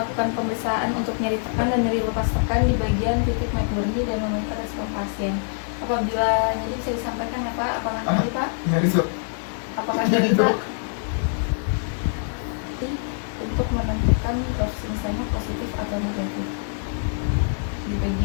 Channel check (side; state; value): right; silent; digital silence